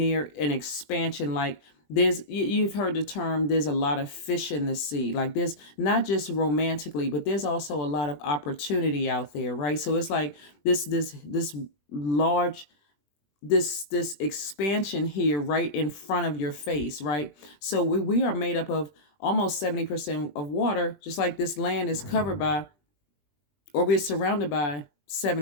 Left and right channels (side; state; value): right; late; 20 ms